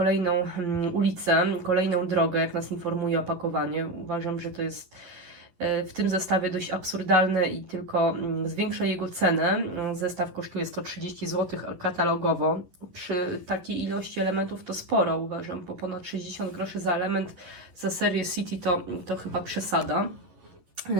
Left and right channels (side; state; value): left; late; 11 ms